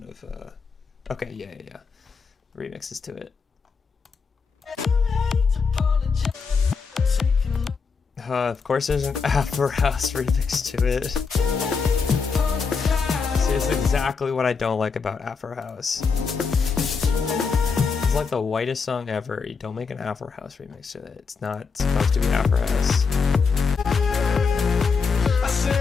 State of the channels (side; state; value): right; quieter; 5.2 dB